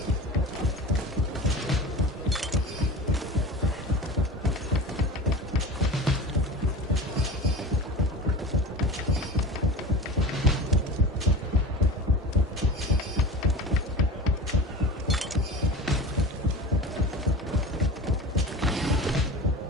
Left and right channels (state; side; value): normal; both; correlation 0.33